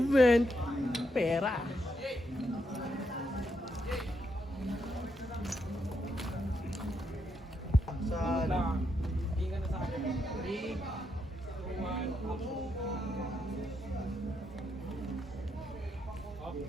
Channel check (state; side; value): normal; both; correlation 0.80